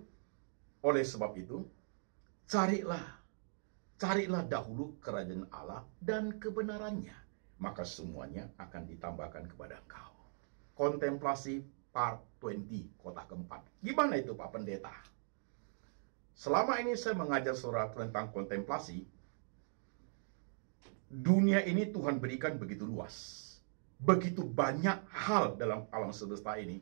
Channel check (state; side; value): silent; left; digital silence